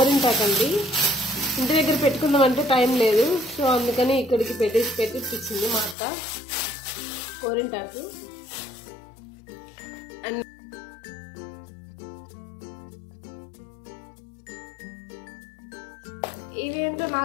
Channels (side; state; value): right; drops out; at 6.0 s